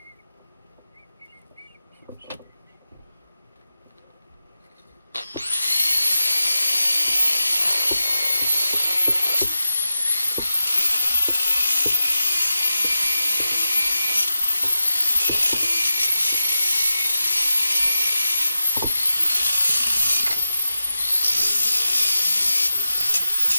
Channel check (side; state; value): both; inverted; correlation -0.91